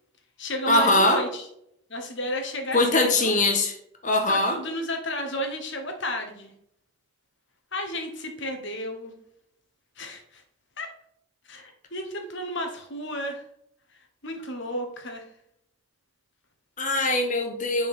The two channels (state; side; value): normal; both; correlation -0.16